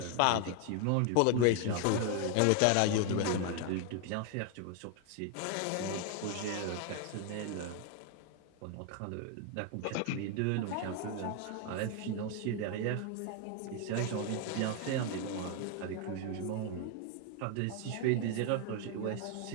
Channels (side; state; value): both; different; correlation 0.01